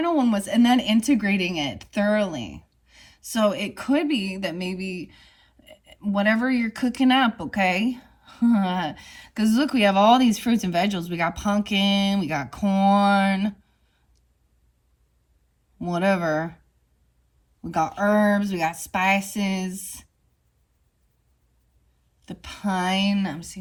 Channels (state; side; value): identical; both; correlation 1.00